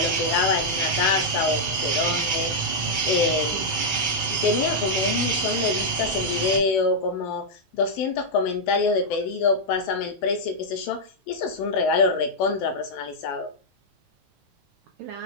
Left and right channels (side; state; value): both; normal; correlation -0.05